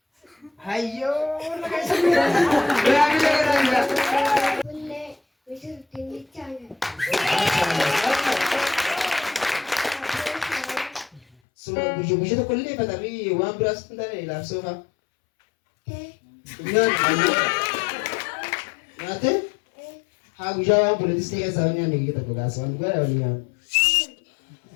Ayo, lagi semua. Boleh, bisa dibincang. Semua bujuk-bujuk tu kulit, tapi uang beras tu tak ada langsung ha. Nyata? Aku jawab boleh disini soalnya nih kita buka soal gue ada lihat.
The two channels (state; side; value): drops out; right; at 11.2 s